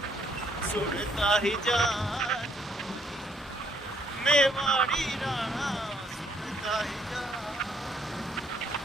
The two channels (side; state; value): both; normal; correlation 0.67